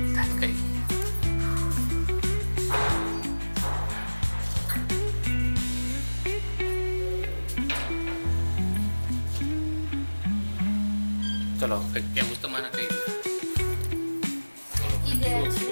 चलो क्या તમારા કઈ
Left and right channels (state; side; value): inverted; both; correlation -1.00